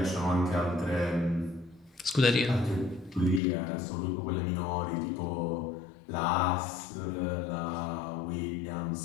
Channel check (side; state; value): right; drops out; at 3.4 s